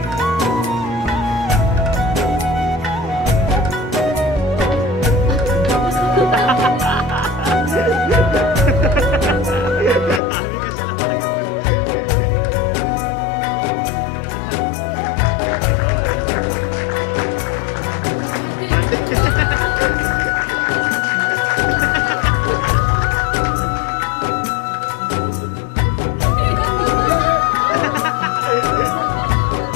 आम्ही कशाला मागे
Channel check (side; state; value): right; drops out; at 10.2 s